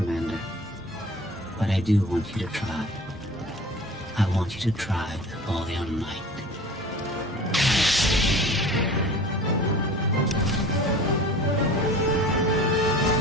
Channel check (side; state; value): both; normal; correlation 0.42